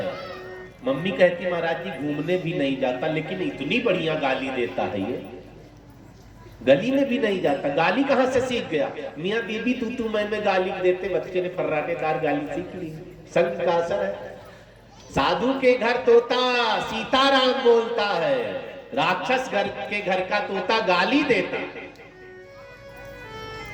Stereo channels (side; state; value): both; identical; correlation 1.00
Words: मम्मी कहती महाराज जी घूमने भी नहीं जाता, लेकिन इतनी बढ़िया गाली देता है ये, गली में भी नहीं जाता। गाली कहां से सीख गया? मियाँ बीबी तू मैं गाली देते बच्चे ने फर्राटेदार गाली सीख ली। संग का असर है। साधु के घर तोता सीताराम बोलता है, राक्षस घर के घर का तोता गाली देता।